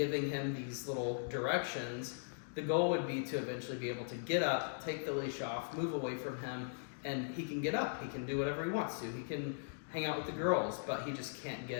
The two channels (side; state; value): right; silent; digital silence